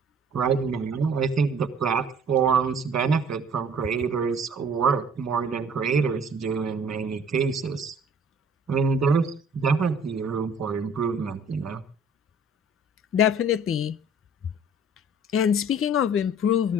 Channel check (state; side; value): normal; both; correlation 0.52